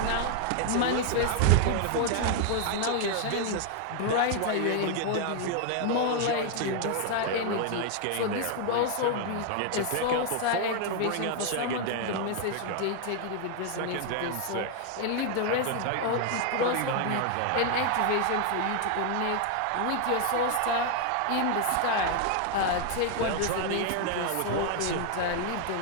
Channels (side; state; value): both; different; correlation 0.00